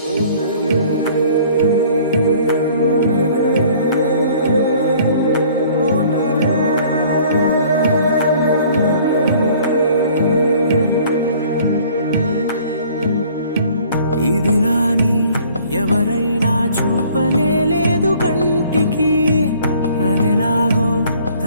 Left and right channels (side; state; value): both; inverted; correlation -0.54